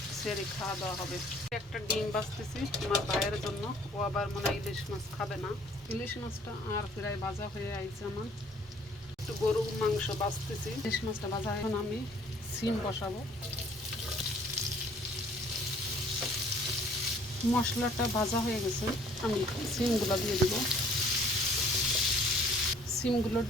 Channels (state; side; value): normal; both; correlation 0.57